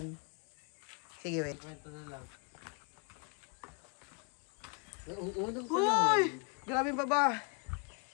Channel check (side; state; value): right; quieter; 32.5 dB